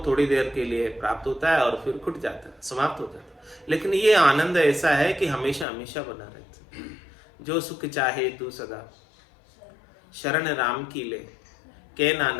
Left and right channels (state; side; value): drops out; right; at 5.7 s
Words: थोड़ी देर के लिए प्राप्त होता है और फिर खुट जाता है, समाप्त हो जाता है। लेकिन ये आनंद ऐसा है कि हमेशा हमेशा बना रहता है। जो सुख चाहे तू सदा शरण राम की ले, के